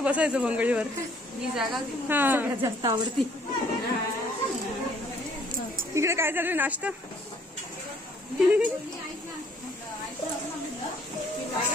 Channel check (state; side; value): normal; both; correlation 0.61